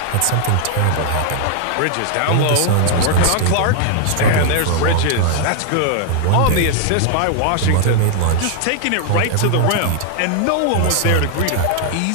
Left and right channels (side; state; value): both; different; correlation 0.00